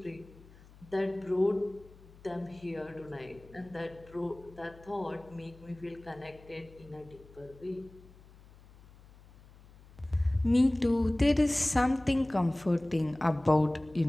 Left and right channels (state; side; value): noise; left; hum, 23 dB below the sound